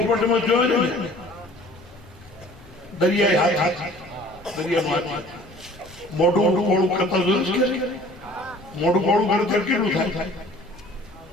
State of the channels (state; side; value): noise; left; rumble, 23 dB below the sound